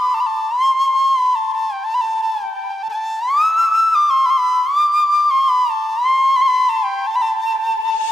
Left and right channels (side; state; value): both; normal; correlation 0.86